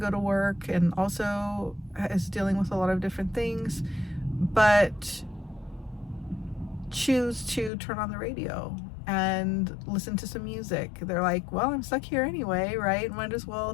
to work and also is dealing with a lot of different things, but choose to turn on the radio and listen to some music. They're like, well, I'm stuck here anyway, right? Might as well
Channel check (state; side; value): drops out; right; at 7.7 s